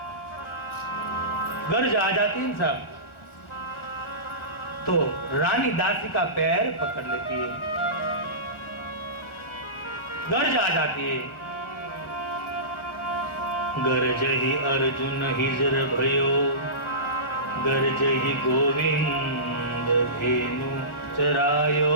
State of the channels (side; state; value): right; late; 1.4 ms